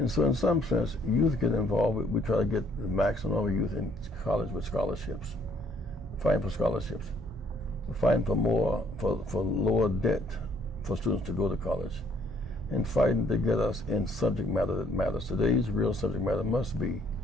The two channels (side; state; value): both; normal; correlation 0.64